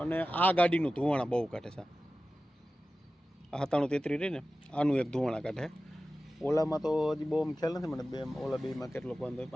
અને આ ગાડીનું ધુવાણા બહુ કાઢે છે. આ 9733 રહી ને આનું એક ધુવાણા કાઢે. ઓલામાં તો હજી બહુ ખ્યાલ નથી મને, ઓલા બેમાં કેટલો વાંધો હોય,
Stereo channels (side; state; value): both; normal; correlation 0.95